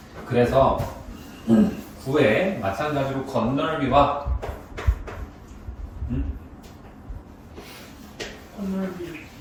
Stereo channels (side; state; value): both; identical; correlation 1.00